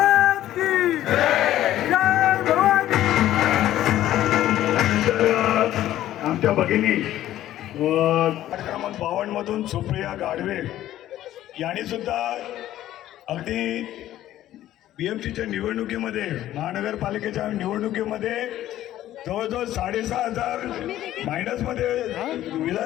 की जय भवानी. आमच्या भगिनी क्रमांक 52 मधून सुप्रिया गाढवे यांनी सुद्धा अगदी BMCच्या निवडणुकीमध्ये, महानगरपालिकेच्या निवडणुकीमध्ये जवळजवळ 6,500 मायनसमध्ये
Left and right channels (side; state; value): right; quieter; 13.3 dB